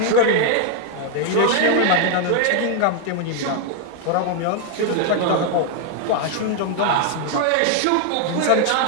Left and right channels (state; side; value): different; both; correlation 0.00